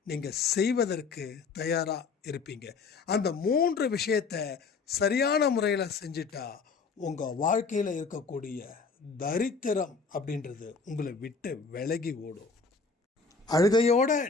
நீங்கள் செய்வதற்கு தயாராக இருப்பீங்க. அந்த 3 விஷயத்தை சரியான முறையில் செஞ்சிட்டா உங்கள் வாழ்க்கையில் இருக்கக்கூடிய தரித்திரம் அப்படின்றது உங்களை விட்டு விலகி ஓடும். அழுகையோடு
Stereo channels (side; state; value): right; quieter; 4.7 dB